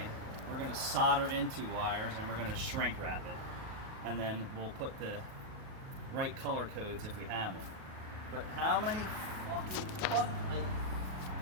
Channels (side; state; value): left; late; 37 ms